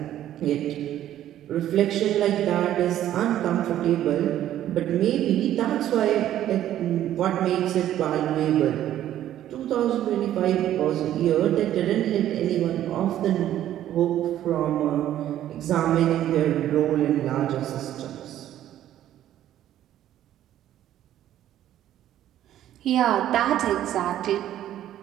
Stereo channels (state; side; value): quieter; left; 12.1 dB